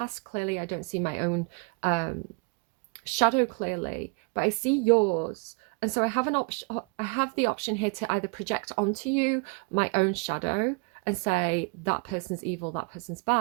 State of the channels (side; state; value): left; quieter; 32.1 dB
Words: clearly. I don't see my own shadow clearly, but I see yours. And so I have an option. I have the option here to either project onto you my own shadow and say that person's evil, that person's